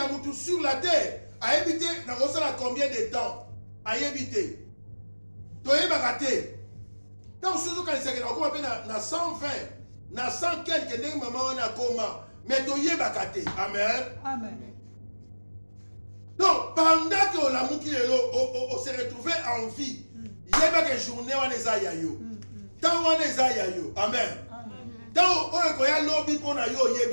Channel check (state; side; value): inverted; both; correlation -1.00